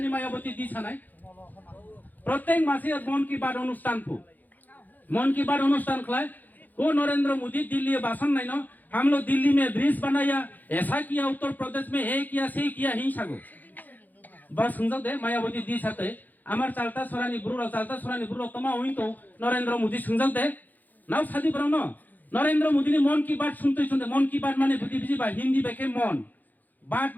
মায়াবতী দি ছানাই প্রত্যেক মাসে মন কি বাত অনুষ্ঠান खिलाए वो नरेंद्र मोदी दिल्ली भाषण नहीं ना हम लोग दिल्ली में ब्रिज बनाया ऐसा किया उत्तर प्रदेश में हे किया से किया हिंसा को बस समझो दे मायावती दी साथे আমার চালতা সরানি বুড়ো তোমা হই তো নরেন্দ্র মোদি সংযোগ দে নাও সাদি বরং ন নরেন্দ্র মোদি নি মন কি বাত শুনতে মন কি বাত মানে বুঝি বা হিন্দি বেকে মন বাত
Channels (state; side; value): late; right; 0.084 ms